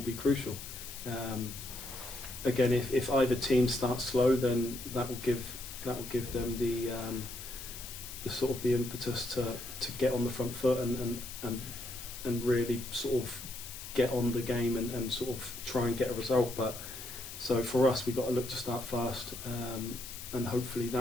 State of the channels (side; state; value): left; noise; hiss, 11 dB below the sound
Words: be crucial. Again, if either team starts slow, then that will give them the sort of the impetus to get on the front foot and really sort of get on the game and sort of try and get a result. But so for us, we've got to look to start fast, and hopefully